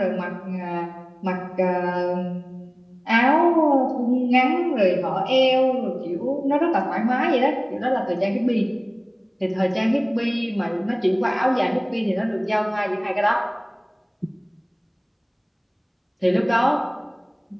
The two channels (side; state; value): both; identical; correlation 1.00